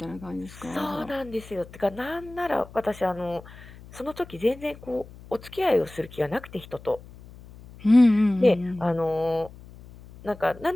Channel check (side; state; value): left; noise; hum, 19 dB below the sound